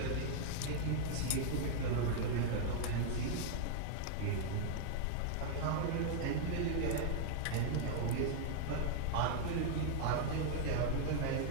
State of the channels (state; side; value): different; both; correlation -0.01